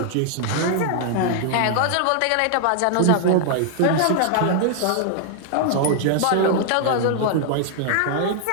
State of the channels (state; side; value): different; both; correlation 0.00